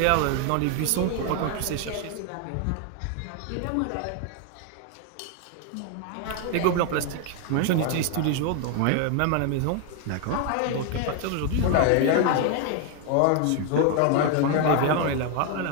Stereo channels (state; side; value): different; both; correlation 0.01